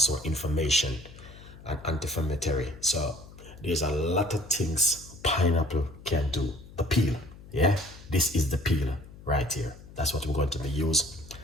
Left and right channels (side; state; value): left; noise; hum, 18 dB below the sound